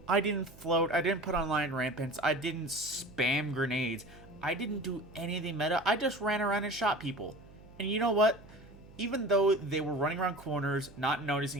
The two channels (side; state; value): right; noise; hum, 21 dB below the sound